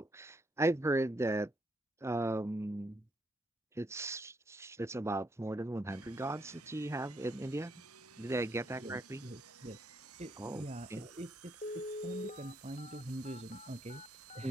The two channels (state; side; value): normal; both; correlation 0.76